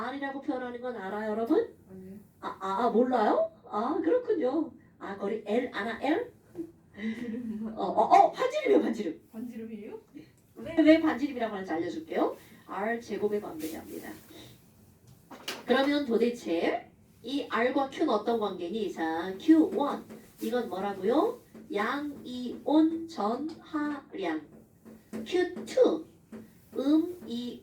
표현하는 건 알아요, 여러분? 아니요. 몰라요? 그렇군요. 거리 L, 아나 L? 반지름. 반지름이요, 반지름. 반지름이에요? 왜 반지름이라고 하는지 알려줄게요. R 제곱에 반비례합니다. 그러면 도대체 이 R과 Q는 어떤 관계니? 자, Q1 이건 뭐라고요? 양이온 전하량. Q2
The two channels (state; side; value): identical; both; correlation 1.00